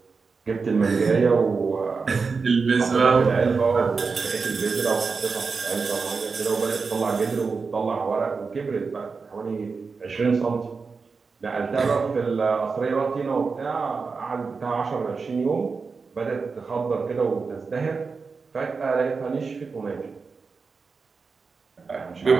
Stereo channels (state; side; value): quieter; left; 4.8 dB